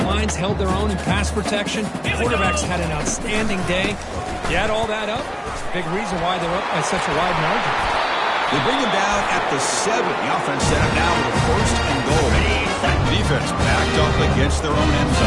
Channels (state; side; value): identical; both; correlation 1.00